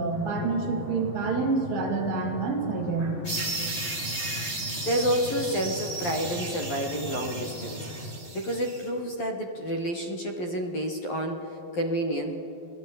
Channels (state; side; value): late; right; 11 ms